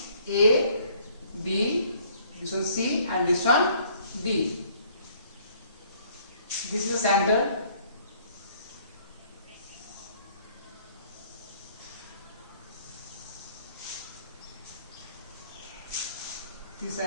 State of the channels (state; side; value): inverted; both; correlation -0.60